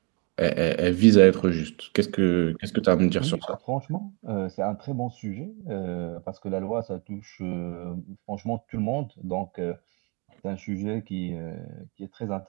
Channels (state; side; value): quieter; left; 33.0 dB